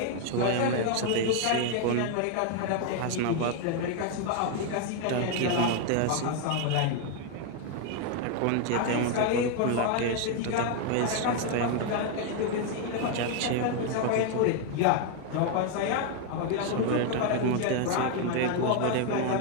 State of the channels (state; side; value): different; both; correlation 0.01